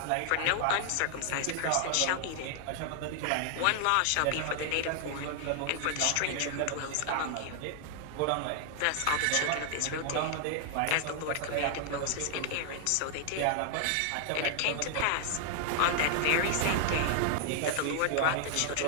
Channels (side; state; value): both; different; correlation 0.00